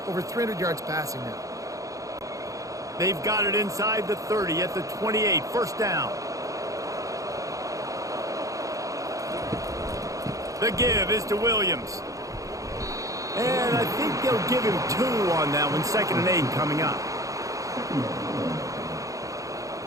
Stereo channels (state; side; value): late; left; 0.16 ms